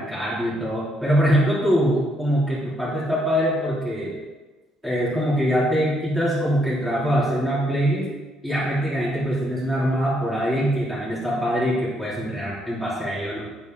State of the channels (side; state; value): both; normal; correlation 0.74